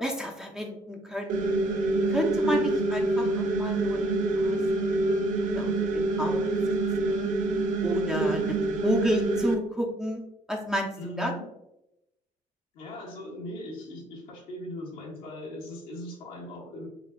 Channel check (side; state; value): both; normal; correlation 0.65